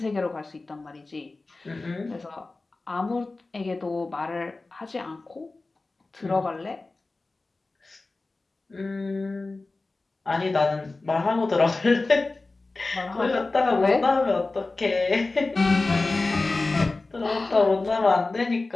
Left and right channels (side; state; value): right; quieter; 3.4 dB